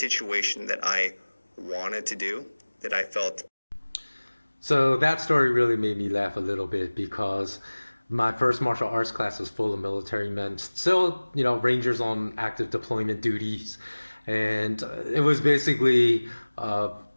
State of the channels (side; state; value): both; inverted; correlation -1.00